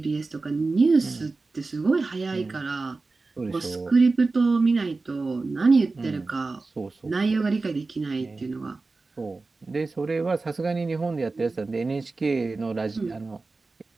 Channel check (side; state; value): left; quieter; 3.7 dB